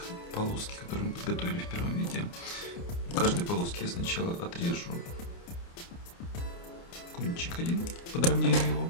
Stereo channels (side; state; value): right; late; 29 ms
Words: полоски, которые мы подготовили в первом видео. У каждой полоски я сначала отрежу кончик один, подровняю его,